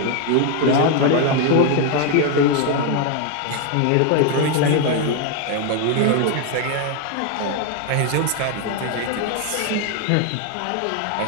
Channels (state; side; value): different; both; correlation 0.01